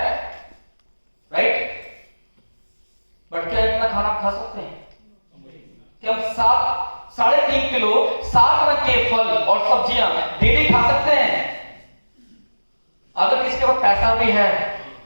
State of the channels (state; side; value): inverted; both; correlation -1.00